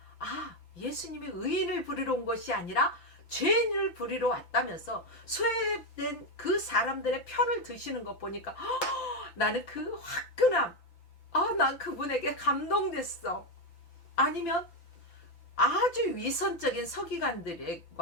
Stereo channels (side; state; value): right; late; 5.9 ms